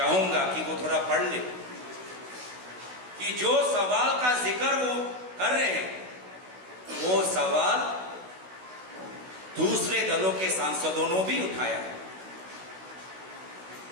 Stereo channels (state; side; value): late; left; 16 ms